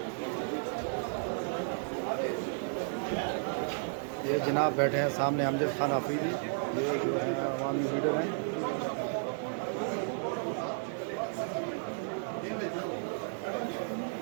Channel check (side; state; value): left; silent; 56 dB below the other